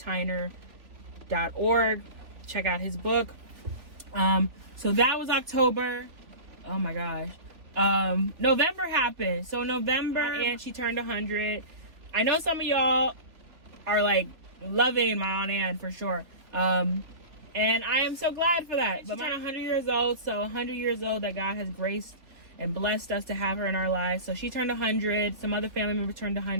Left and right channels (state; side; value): late; left; 3.4 ms